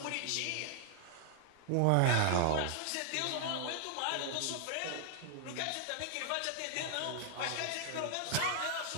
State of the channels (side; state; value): both; different; correlation -0.01